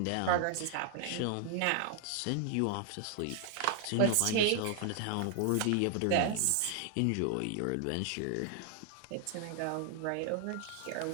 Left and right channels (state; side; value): different; both; correlation 0.00